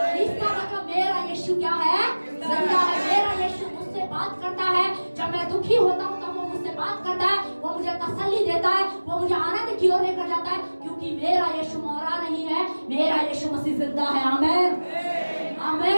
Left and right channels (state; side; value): inverted; both; correlation -1.00